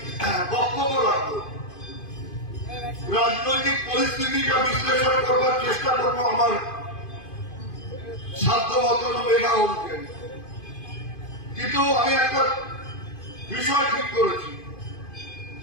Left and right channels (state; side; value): late; right; 2.5 ms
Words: রাজনৈতিক পরিস্থিতিটা বিশ্লেষণ করবার চেষ্টা করবো আমার সাধ্য মতন মেধা অনুযায়ী, কিন্তু আমি একটা বিষয় ঠিক করেছি